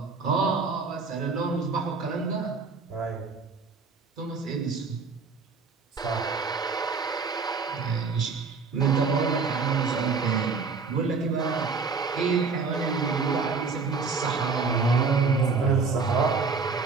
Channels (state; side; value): quieter; left; 4.6 dB